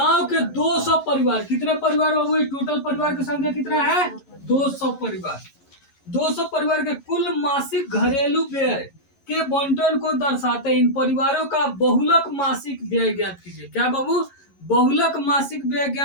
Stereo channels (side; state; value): right; late; 11 ms